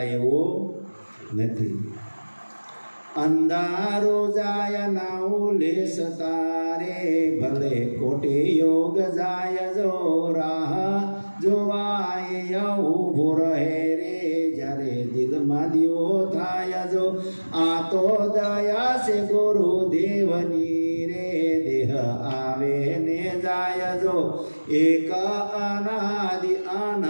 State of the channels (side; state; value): both; inverted; correlation -1.00